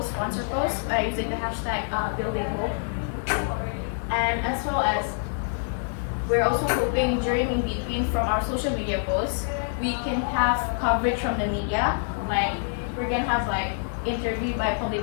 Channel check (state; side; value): silent; right; 61 dB below the other